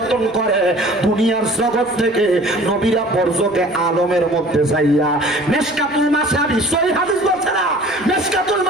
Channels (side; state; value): right; noise; rumble, 27 dB below the sound